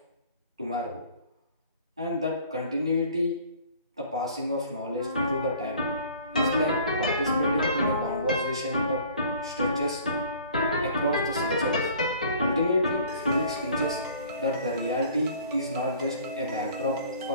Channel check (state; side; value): inverted; both; correlation -0.51